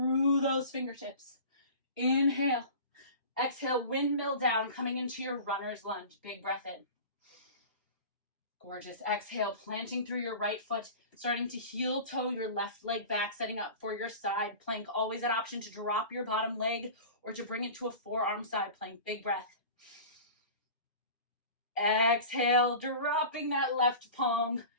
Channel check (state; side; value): inverted; both; correlation -0.37